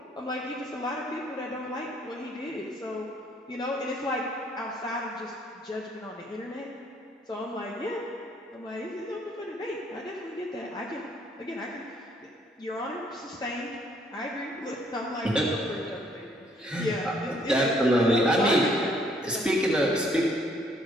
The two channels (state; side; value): normal; both; correlation 0.65